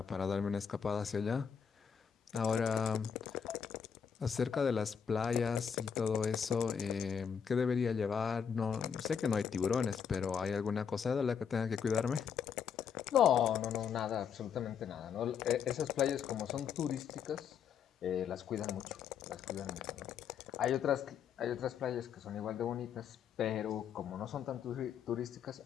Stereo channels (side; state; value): right; quieter; 7.3 dB